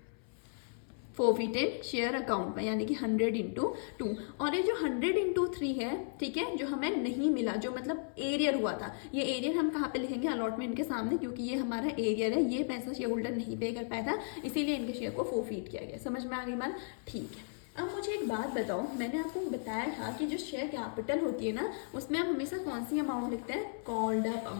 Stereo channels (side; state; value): right; silent; 54 dB below the other